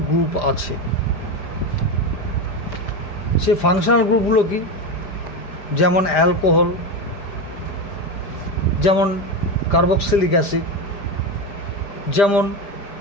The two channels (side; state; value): right; late; 5.0 ms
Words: গ্রুপ আছে। সে ফাংশনাল গ্রুপগুলো কি? যেমন অ্যালকোহল, যেমন কার্বক্সিলিক অ্যাসিড, যেমন